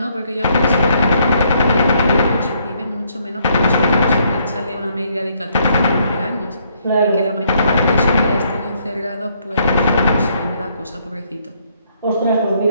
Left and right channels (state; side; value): inverted; both; correlation -0.70